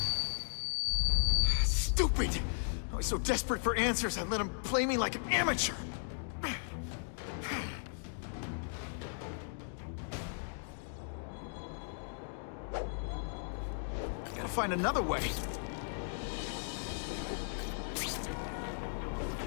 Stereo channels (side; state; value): right; silent; digital silence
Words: Stupid! I was so desperate for answers, I let him play me like an amateur. I gotta find another way.